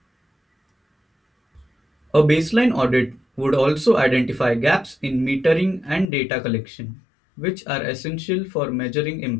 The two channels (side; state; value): right; drops out; at 6.1 s